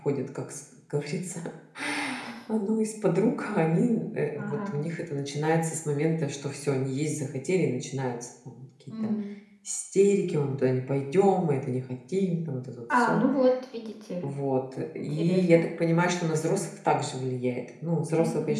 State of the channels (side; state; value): both; identical; correlation 1.00